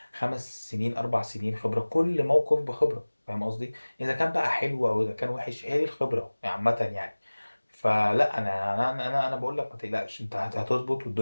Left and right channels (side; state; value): both; inverted; correlation -1.00